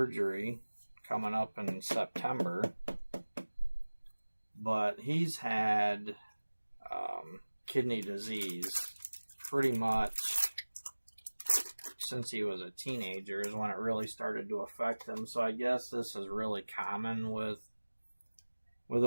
coming up in September, but he's had kidney disease pretty much since he was a teenager is when it really started to affect him. So I guess this is really common with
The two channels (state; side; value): inverted; both; correlation -1.00